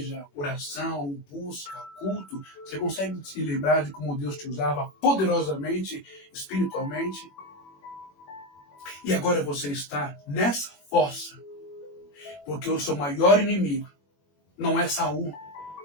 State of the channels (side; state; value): right; late; 21 ms